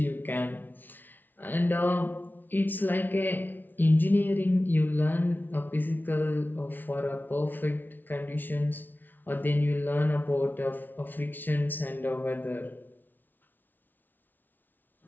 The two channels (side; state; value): right; late; 0.088 ms